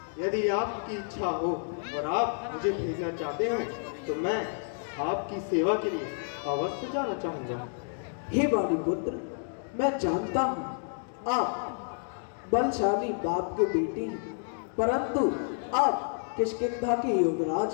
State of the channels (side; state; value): right; silent; digital silence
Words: यदि आपकी इच्छा हो और आप मुझे भेजना चाहते हैं तो मैं आपकी सेवा के लिए अवश्य जाना चाहूँगा। हे बाली पुत्र, मैं जानता हूँ आप बलशाली बाप के बेटे हैं, परंतु आप किष्किंधा के युवराज